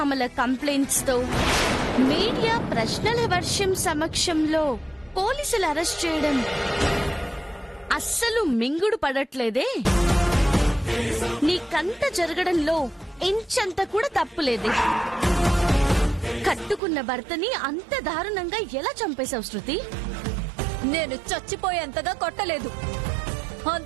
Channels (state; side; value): drops out; left; at 16.8 s